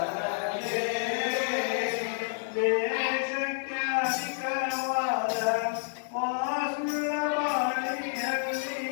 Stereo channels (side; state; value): right; silent; 58 dB below the other